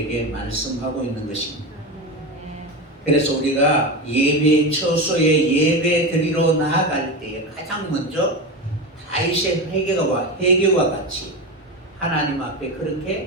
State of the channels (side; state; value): both; normal; correlation 0.20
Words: 말씀하고 있는 것입니다. 그래서 우리가 예배 처소에 예배 드리러 나아갈 때에 가장 먼저 다윗의 회개와 같이 하나님 앞에